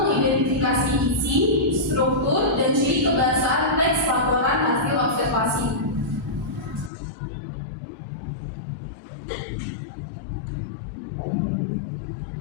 mengidentifikasi isi, struktur, dan ciri kebahasaan teks laporan hasil observasi.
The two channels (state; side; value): drops out; right; at 6.9 s